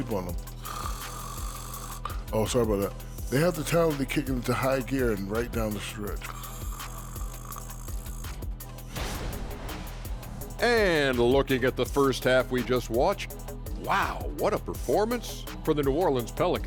on them. Oh, sorry about that. They have the talent to kick it into high gear and right down the stretch. And looking at the first half we just watched, wow, what a performance for the New Orleans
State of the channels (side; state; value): both; identical; correlation 1.00